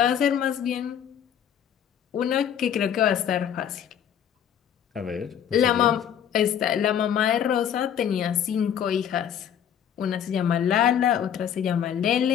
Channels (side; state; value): right; quieter; 9.1 dB